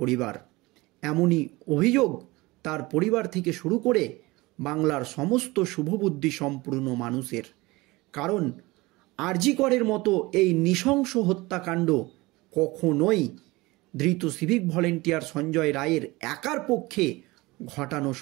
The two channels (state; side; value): quieter; left; 21.8 dB